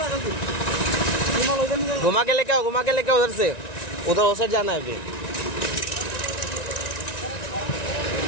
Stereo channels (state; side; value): late; right; 1.9 ms